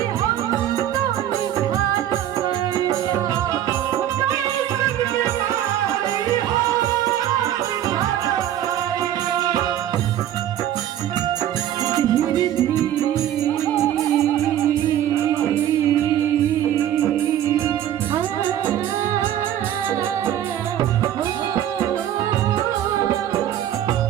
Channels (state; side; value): quieter; left; 11.4 dB